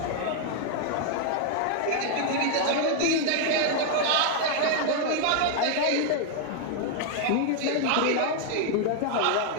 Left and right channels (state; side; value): different; both; correlation 0.00